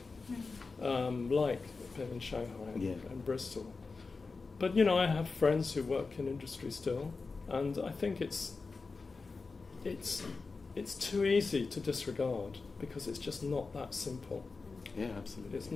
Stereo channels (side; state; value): right; quieter; 4.2 dB